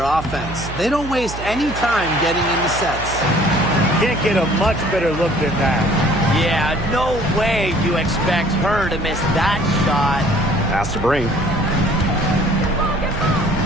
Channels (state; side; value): noise; right; hum, 10 dB below the sound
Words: offense. They don't waste any time getting into sets. Can't get a much better look than that. Yeah, no way you expect her to miss that shot. Pass to Brink.